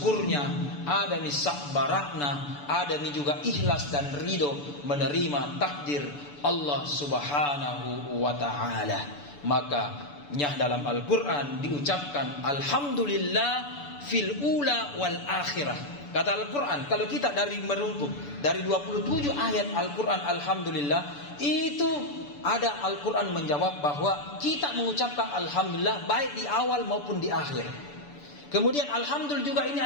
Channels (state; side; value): late; right; 6.9 ms